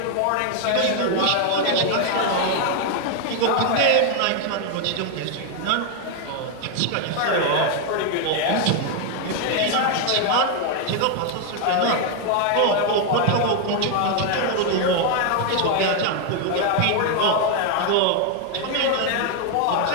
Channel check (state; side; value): different; both; correlation 0.01